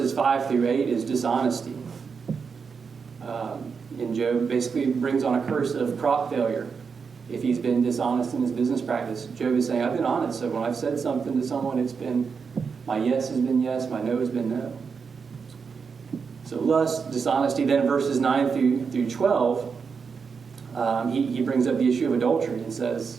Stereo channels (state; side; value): quieter; left; 5.7 dB